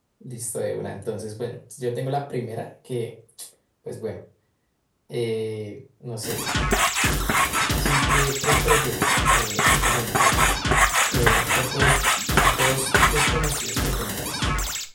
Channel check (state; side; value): identical; both; correlation 1.00